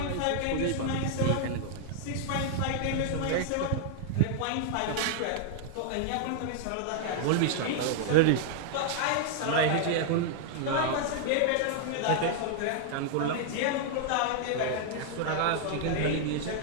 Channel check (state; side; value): different; both; correlation -0.01